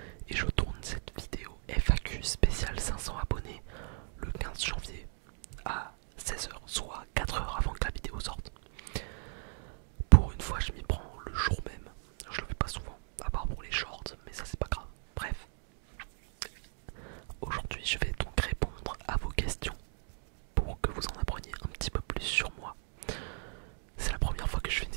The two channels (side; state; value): left; silent; 54 dB below the other